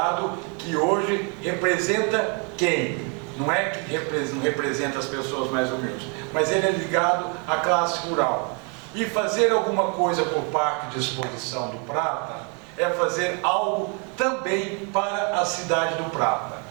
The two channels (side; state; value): left; quieter; 34.1 dB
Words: que hoje representa quem? Não é que não representa as pessoas mais humildes, mas ele é ligado à classe rural. E fazer alguma coisa por Parque de Exposição do Prata é fazer algo também para a cidade do Prata.